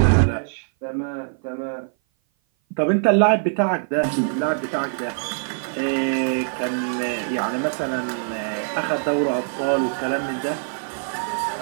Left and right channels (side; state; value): left; silent; 57 dB below the other